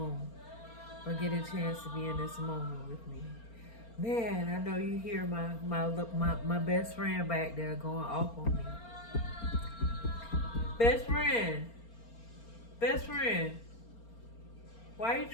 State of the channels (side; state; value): right; late; 4.3 ms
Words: get a chance to be in this moment with me. Man, I know you hear my best friend back there going off on me. Best friend, best friend, why you